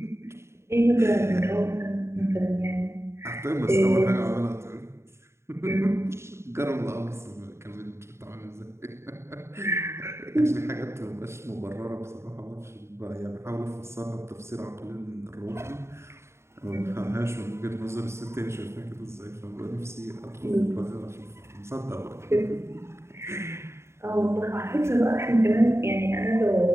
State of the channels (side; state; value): left; late; 0.13 ms